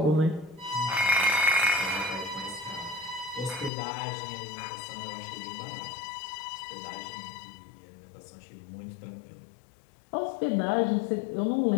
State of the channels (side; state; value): right; drops out; at 3.7 s